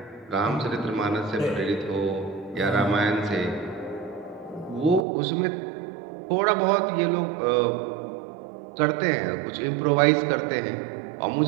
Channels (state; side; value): drops out; left; at 5.0 s